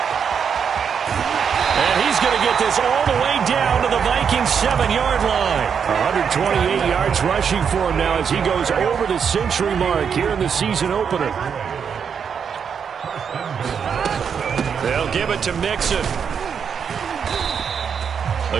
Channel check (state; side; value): quieter; left; 7.0 dB